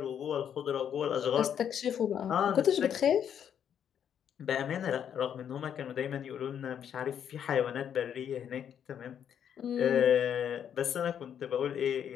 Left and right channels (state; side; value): quieter; right; 8.8 dB